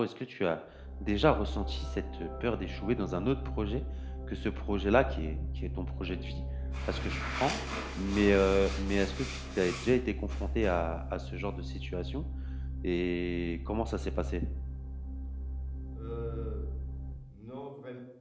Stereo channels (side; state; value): both; identical; correlation 1.00